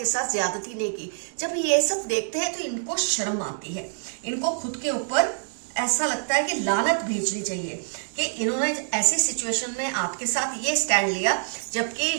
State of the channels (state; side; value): silent; left; digital silence